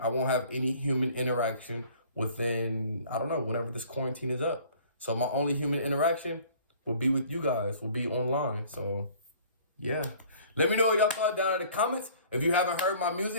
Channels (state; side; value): inverted; both; correlation -0.52